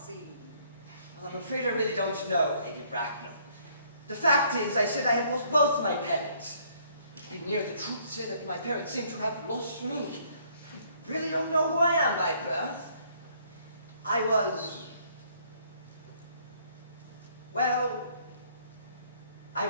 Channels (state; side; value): inverted; both; correlation -0.64